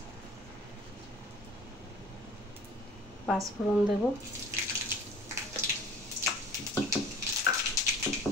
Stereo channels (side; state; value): both; normal; correlation 0.46